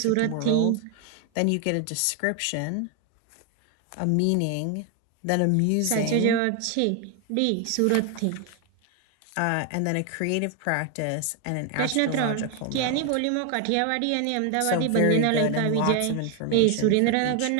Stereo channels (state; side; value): different; both; correlation 0.01